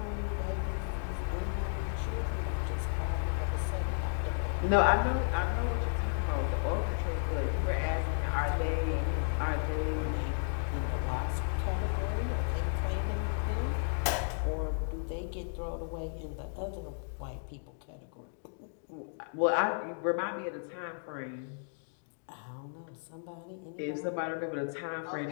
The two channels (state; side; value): silent; right; digital silence